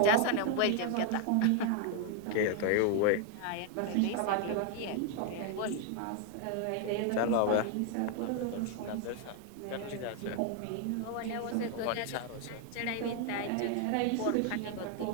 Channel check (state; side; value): different; both; correlation 0.01